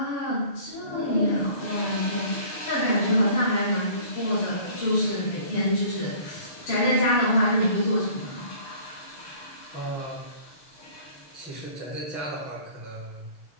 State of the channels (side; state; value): right; late; 6.7 ms